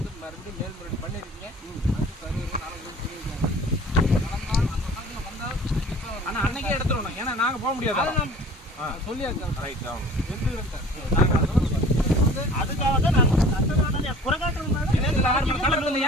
ஆனா அன்னைக்கே எடுத்துடணும், ஏன்னா நாங்க போக முடியாது. அதுக்காக தான் நான்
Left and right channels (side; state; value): both; normal; correlation 0.46